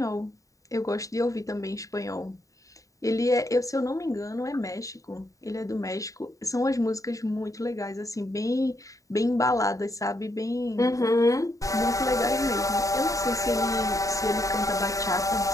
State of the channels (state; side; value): late; right; 0.16 ms